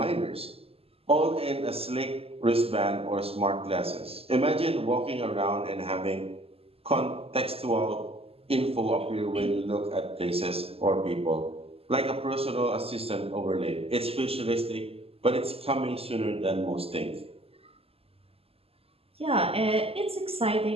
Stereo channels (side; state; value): left; late; 0.28 ms